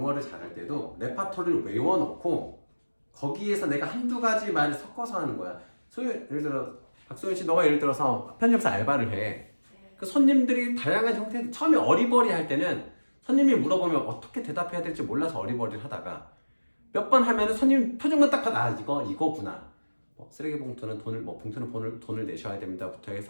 잘할 때도 레파토리를 외워놓고 거기에서 내가 한두 가지 말을 섞어서 하는 거야. 예를 들어 박소연 씨, 너가 예를 들어서 편집사 알바를 해. 그 손님들이 다양한 형태, 처음에 어리버리 할 때는 손님이 물어보면 어떻게 대답해야 될지 몰라서 어리버리를 하다가 몇 번 하면은 손님 표정만 딱 봐도 이거구나. 쓰레기 봉투는 봉투는 돈을 내셔야 됩니다부터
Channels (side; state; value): both; inverted; correlation -1.00